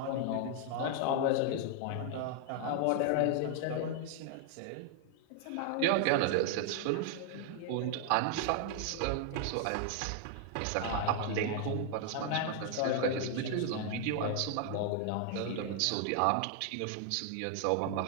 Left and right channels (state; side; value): different; both; correlation 0.00